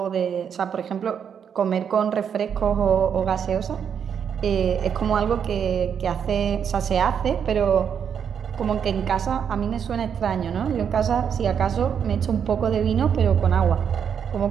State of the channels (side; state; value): left; quieter; 7.7 dB